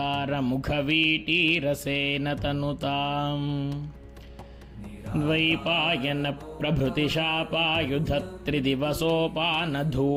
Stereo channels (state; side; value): identical; both; correlation 1.00